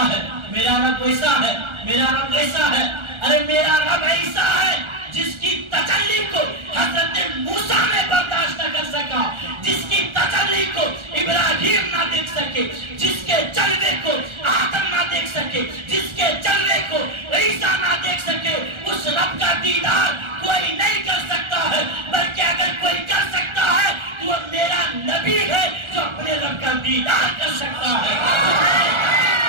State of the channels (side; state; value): left; late; 1.4 ms